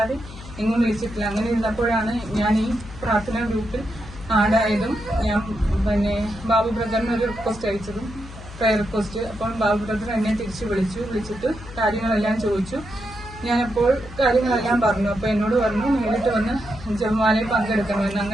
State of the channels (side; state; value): left; noise; hum, 15 dB below the sound